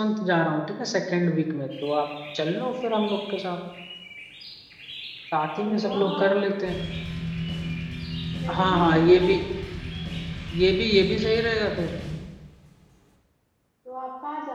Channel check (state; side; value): identical; both; correlation 1.00